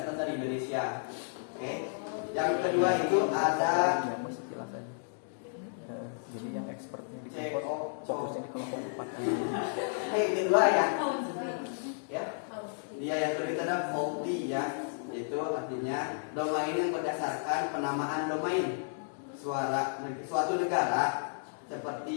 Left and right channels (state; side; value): silent; right; digital silence